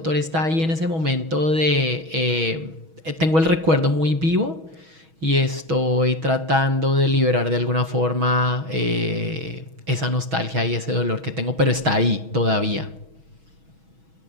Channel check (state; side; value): late; left; 6.2 ms